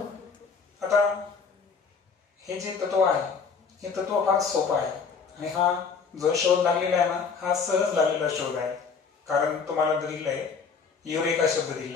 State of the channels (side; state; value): right; quieter; 5.6 dB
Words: आता हे जे तत्व आहे हे तत्व फार सोपं आहे आणि हा जो शोध लागलेला आहे ना हा सहज लागलेला शोध आहे. कारण तुम्हाला दिलेला आहे युरेका शब्द